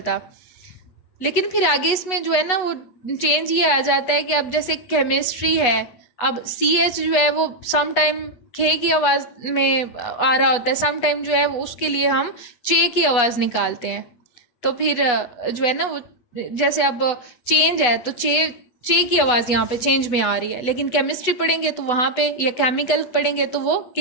लेकिन फिर आगे इसमें जो है ना वो चेंज ये आ जाता है कि अब जैसे केमिस्ट्री है, अब सी एच जो है वो सम टाइम खे की आवाज़ में आ रहा होता है, सम टाइम जो है वो उसके लिए हम चे की आवाज़ निकालते हैं। तो फिर जो है ना वो जैसे अब चेंज है तो चे की आवाज़ यहाँ पे चेंज में आ रही है, लेकिन केमिस्ट्री पढ़ेंगे तो वहाँ पे या केमिकल पढ़ेंगे तो वो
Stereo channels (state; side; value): late; right; 8.1 ms